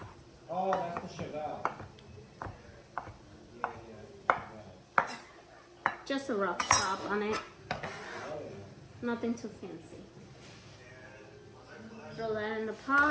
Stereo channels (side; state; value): both; identical; correlation 1.00